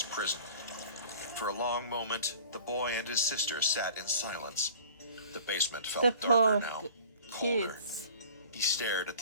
prison. For a long moment, the boy and his sister sat in silence. The basement felt The darker poor now, colder. kids. He stared at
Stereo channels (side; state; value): both; inverted; correlation -0.45